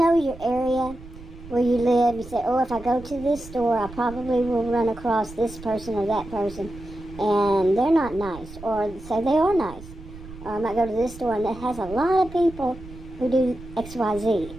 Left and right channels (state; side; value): noise; right; rumble, 16 dB below the sound